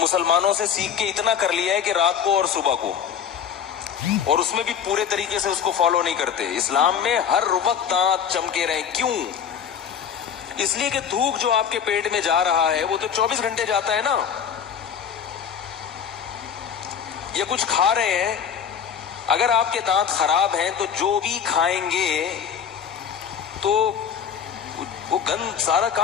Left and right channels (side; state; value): right; quieter; 7.9 dB